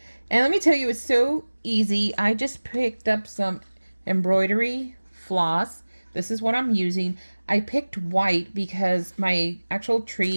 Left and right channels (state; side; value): inverted; both; correlation -1.00